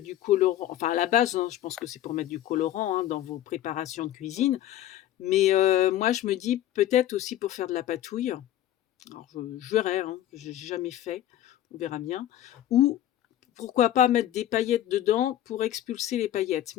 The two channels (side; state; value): right; quieter; 12.7 dB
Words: colorant, enfin à la base, hein, je pense que c'est pour mettre du colorant, hein, dans vos préparations de cuisine. Mais moi je me dis peut-être aussi pour faire de la patouille. Alors je verrai, hein, j'ai jamais fait, on verra bien. Ou pourquoi pas mettre des paillettes dedans pour expulser les paillettes.